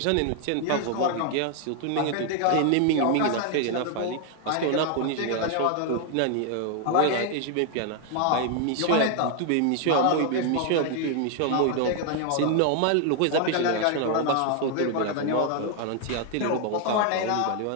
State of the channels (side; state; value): both; different; correlation 0.00